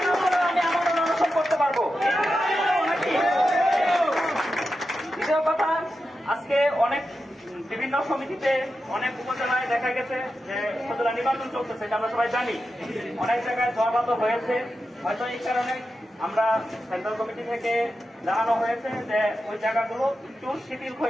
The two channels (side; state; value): both; normal; correlation 0.90